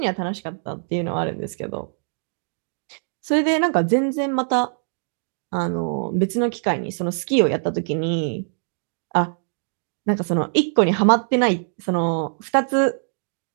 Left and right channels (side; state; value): left; silent; digital silence